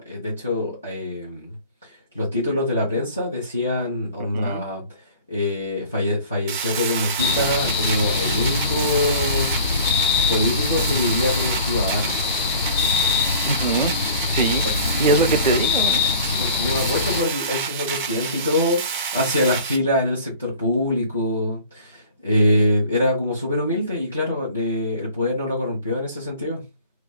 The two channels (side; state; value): both; inverted; correlation -0.45